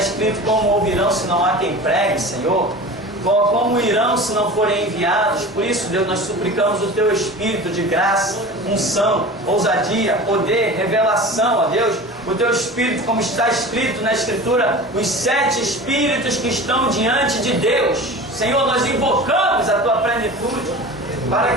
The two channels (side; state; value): both; normal; correlation 0.35